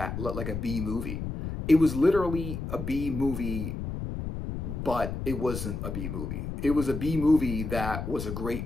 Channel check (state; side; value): noise; left; rumble, 5 dB below the sound